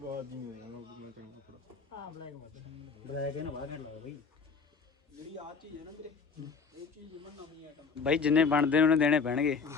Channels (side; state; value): right; quieter; 5.2 dB